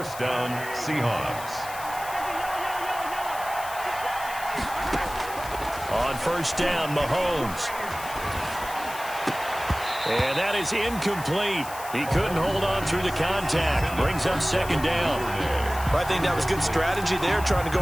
down, Seahawks. On 1st down, Mahomes. And that is incomplete. He couldn't hold on through the contact. Brings up 2nd down. I think that was good strategy there, trying to go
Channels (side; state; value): left; noise; hiss, 13 dB below the sound